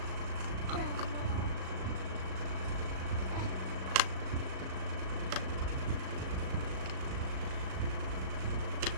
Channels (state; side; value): late; left; 37 ms